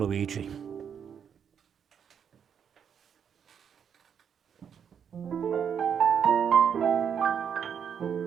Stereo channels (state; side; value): quieter; left; 7.7 dB